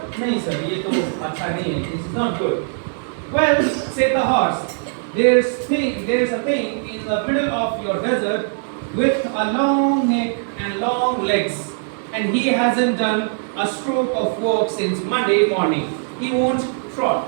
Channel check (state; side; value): silent; left; digital silence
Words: नहीं सर, ये तो अच्छा नहीं है. This is not good. Well, said the horse, there's a thing in the middle of your desert with a long neck and long legs, and he hasn't done a stroke of work since Monday morning. He won't